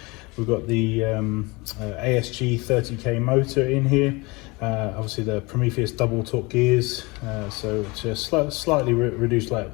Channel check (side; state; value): right; quieter; 25.3 dB